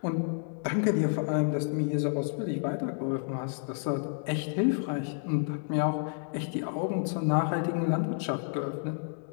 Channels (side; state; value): right; silent; digital silence